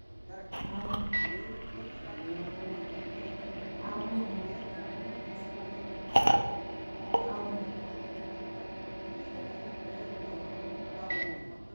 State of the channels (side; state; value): both; inverted; correlation -1.00